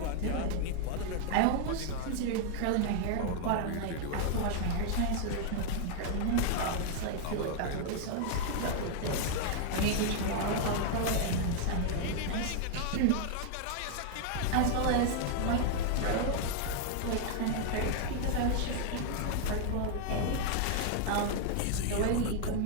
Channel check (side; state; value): both; different; correlation 0.00